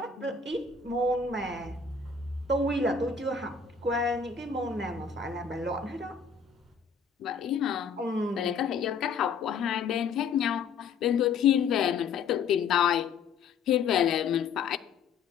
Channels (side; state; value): right; quieter; 5.7 dB